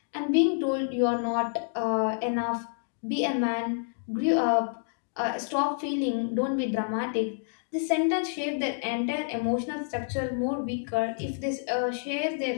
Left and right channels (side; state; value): right; silent; digital silence